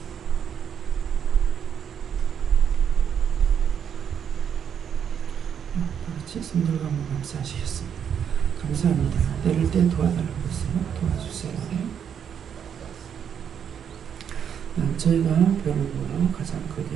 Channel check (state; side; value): quieter; left; 8.1 dB